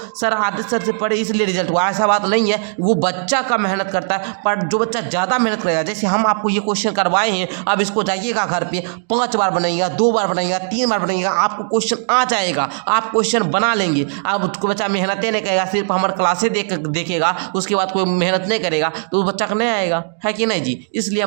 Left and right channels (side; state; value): left; silent; 67 dB below the other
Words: सर आदित्य सर से पढ़े इसलिए रिजल्ट हुआ, ऐसा बात नहीं है, वो बच्चा का मेहनत करता है। पर जो बच्चा ज़्यादा मेहनत करेगा, जैसे हम आपको ये क्वेश्चन करवाए हैं, अब इसको जाइएगा घर पे 5 बार बनाइएगा, 2 बार बनाइएगा, 3 बार बनाइएगा, आपको क्वेश्चन आ जाएगा, आप क्वेश्चन बना लेंगे। अब कोई बच्चा मेहनत नहीं करेगा, सिर्फ हमारे क्लासे देखेगा, उसके बाद कोई मेहनत नहीं करेगा तो उस बच्चा का नहीं आएगा, है कि नहीं जी। इसलिए